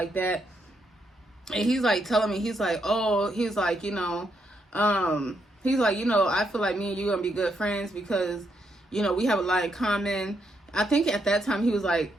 that. And he's like telling me, he's like, he's like, I feel like me and you gonna be good friends because, we have a lot in common. I think at that time he was like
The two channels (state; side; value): normal; both; correlation 0.78